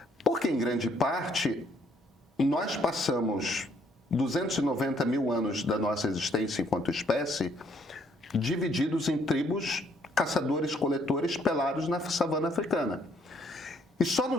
porque em grande parte nós passamos 290 mil anos da nossa existência enquanto espécie divididos em tribos caçadores-coletores pelados na savana africana. E só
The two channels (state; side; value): normal; both; correlation 0.67